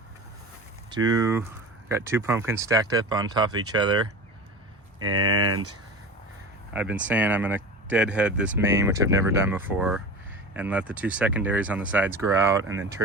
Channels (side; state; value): both; normal; correlation 0.32